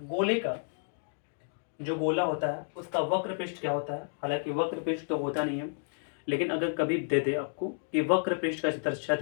गोले का जो गोला होता है उसका वक्र पृष्ठ क्या होता है, हालांकि वक्र पृष्ठ तो होता नहीं है, लेकिन अगर कभी दे दे आपको कि वक्र पृष्ठ का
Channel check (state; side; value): silent; right; digital silence